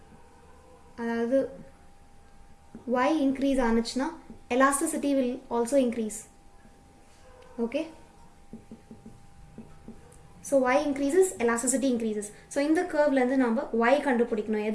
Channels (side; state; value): both; identical; correlation 1.00